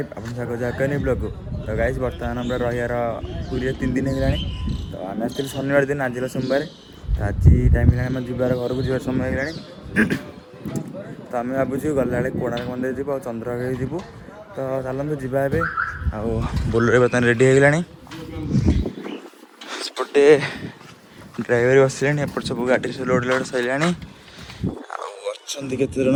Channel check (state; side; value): identical; both; correlation 1.00